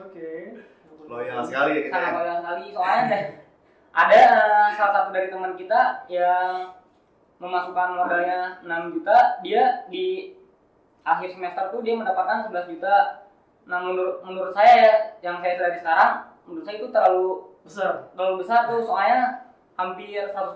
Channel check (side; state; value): both; identical; correlation 1.00